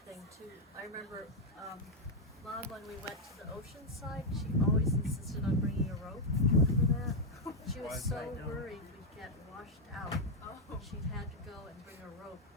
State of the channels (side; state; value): both; normal; correlation 0.01